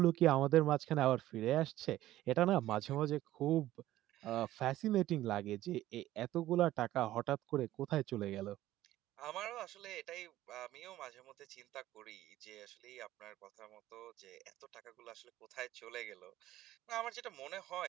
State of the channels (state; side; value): quieter; left; 14.7 dB